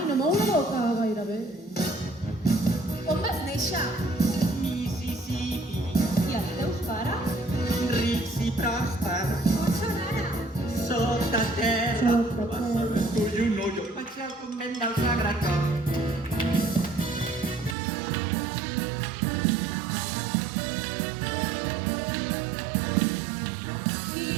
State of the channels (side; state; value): left; drops out; at 17.8 s